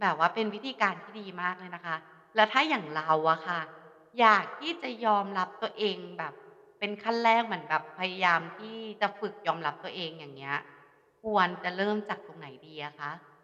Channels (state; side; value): identical; both; correlation 1.00